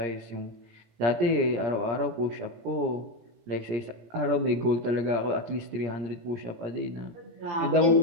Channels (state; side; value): late; left; 17 ms